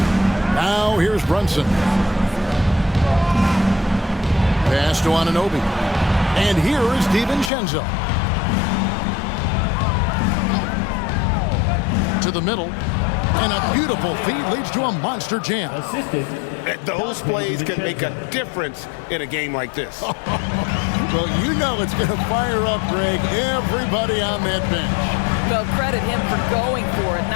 Now here's Brunson. Pass to Anunoby. And here is DiVincenzo. To the middle. And a beautiful feed leads to a monster jam. Assisted. Those plays can make a difference in a game like this. Well, you know it's going to fire up, Greg, everybody on that bench. Well, credit him for going for it,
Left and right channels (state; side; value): drops out; right; at 7.5 s